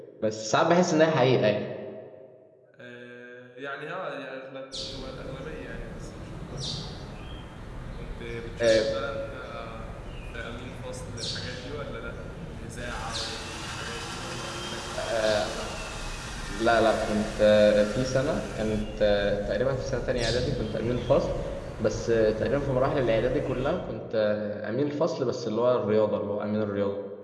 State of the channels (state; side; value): identical; both; correlation 1.00